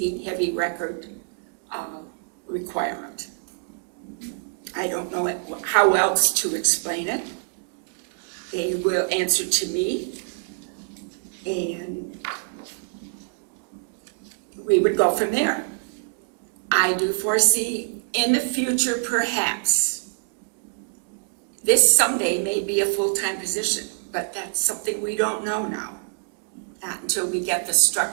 heavy record requirement. I don't know how else to explain it. They will answer to me, and we would go from there. I do foresee in the future, perhaps, this someday may be a full-time position, but that's something we don't know now. Not until we get the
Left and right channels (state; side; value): silent; left; digital silence